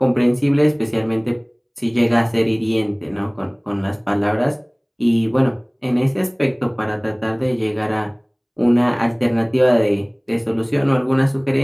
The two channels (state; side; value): identical; both; correlation 1.00